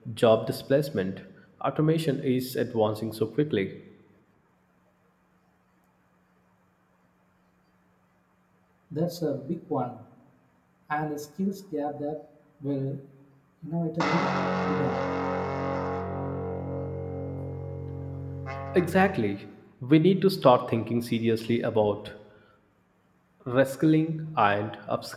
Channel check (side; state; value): both; identical; correlation 1.00